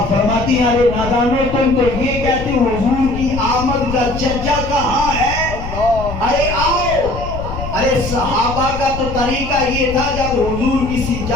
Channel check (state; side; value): noise; left; rumble, 8 dB below the sound